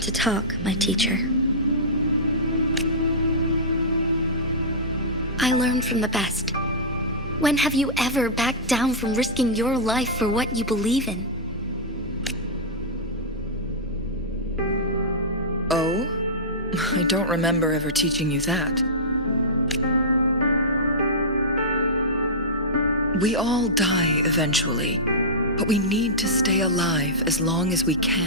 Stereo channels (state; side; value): normal; both; correlation -0.12